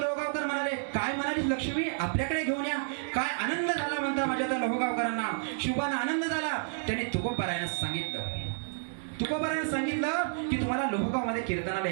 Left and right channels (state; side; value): silent; left; digital silence